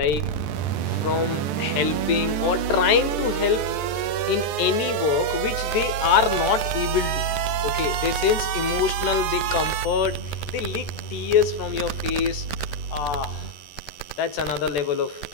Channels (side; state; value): right; late; 14 ms